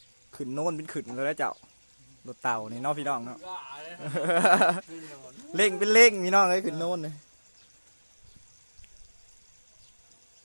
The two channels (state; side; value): inverted; both; correlation -1.00